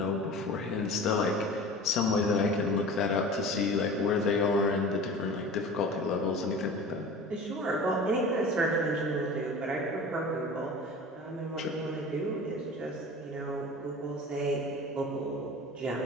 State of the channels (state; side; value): normal; both; correlation 0.37